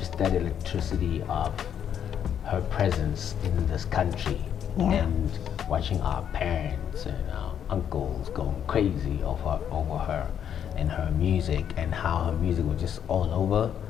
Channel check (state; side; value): quieter; right; 8.9 dB